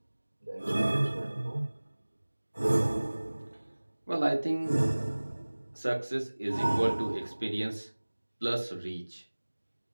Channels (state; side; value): inverted; both; correlation -1.00